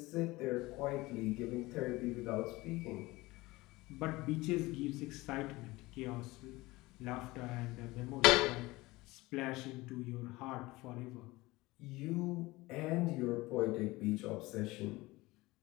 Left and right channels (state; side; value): quieter; right; 20.7 dB